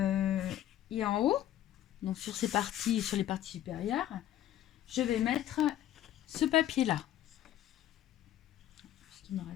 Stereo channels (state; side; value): quieter; right; 12.3 dB